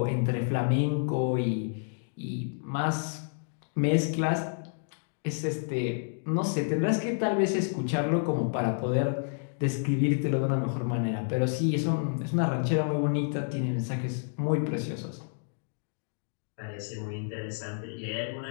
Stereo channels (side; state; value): right; silent; digital silence